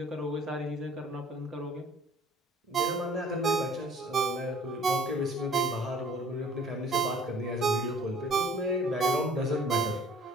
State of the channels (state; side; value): normal; both; correlation 0.52